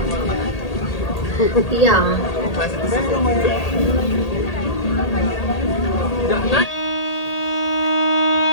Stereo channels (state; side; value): late; right; 1.8 ms